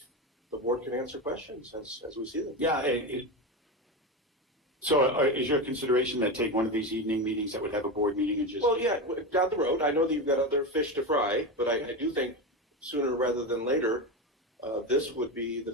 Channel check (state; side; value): normal; both; correlation 0.18